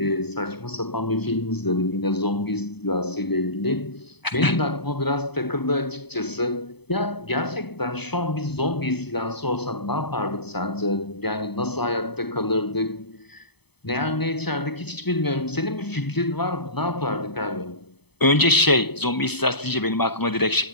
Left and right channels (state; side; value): late; right; 0.98 ms